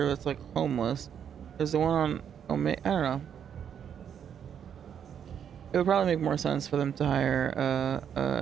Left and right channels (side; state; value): left; quieter; 8.4 dB